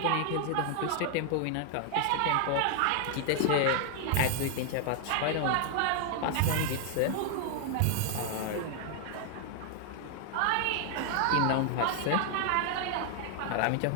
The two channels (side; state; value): both; different; correlation 0.00